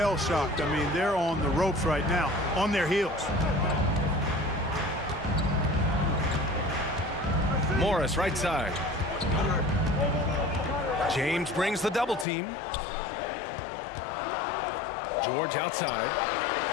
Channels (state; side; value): drops out; right; at 12.2 s